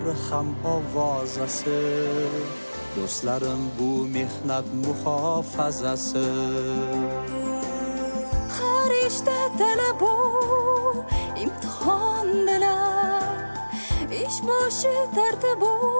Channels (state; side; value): inverted; both; correlation -1.00